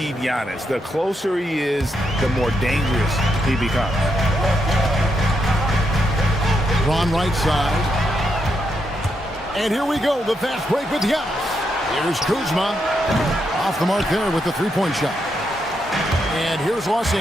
Giannis. The closer he is, the more dangerous he becomes. Drawn right side. And here we go, the fast break with Giannis. Here's Kuzma. Off the mark there with the three-point shot. And here's Los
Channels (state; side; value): normal; both; correlation 0.81